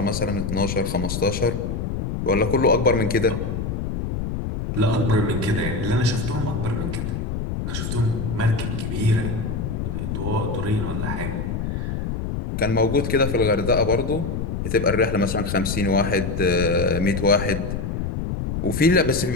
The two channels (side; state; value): left; noise; rumble, 3 dB below the sound